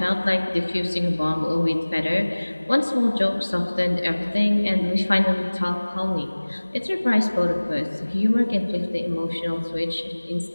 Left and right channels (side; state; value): both; inverted; correlation -1.00